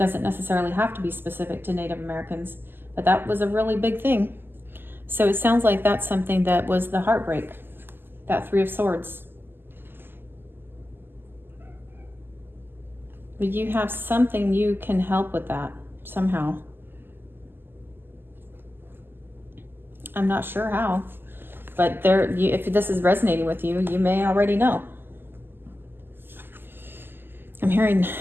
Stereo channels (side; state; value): left; late; 0.098 ms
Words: necessarily have to be specific to Native Americans, but that was a really big thing. So it sounds like that's something that was the heartbreak, that Three of Swords. But you have something you can help with that somehow. I'm not sure how. But if this is resonating with you, you may already know. I'm hearing